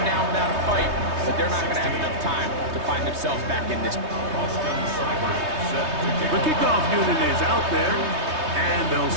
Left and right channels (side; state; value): left; late; 3.2 ms